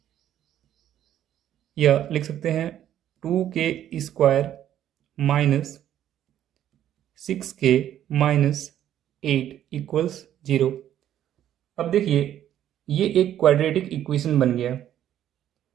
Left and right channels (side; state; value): left; quieter; 11.2 dB